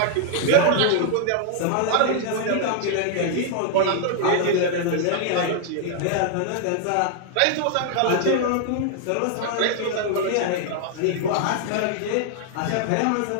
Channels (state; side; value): different; both; correlation 0.00